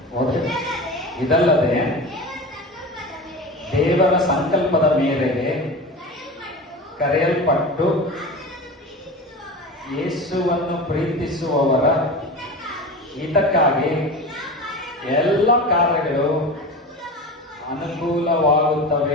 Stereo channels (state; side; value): normal; both; correlation 0.29